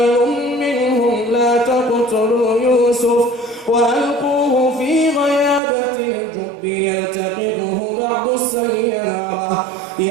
منهم لا تقتلوا يوسف وألقوه في غيابة الجب يلتقطه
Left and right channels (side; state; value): left; drops out; at 5.6 s